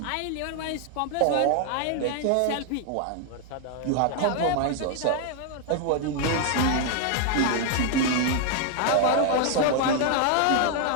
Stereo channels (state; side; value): different; both; correlation 0.00